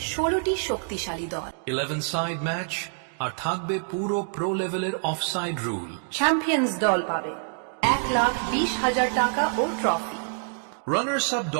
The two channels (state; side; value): silent; left; 61 dB below the other